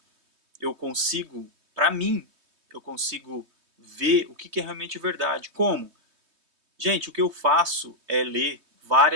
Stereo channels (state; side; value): late; left; 3.2 ms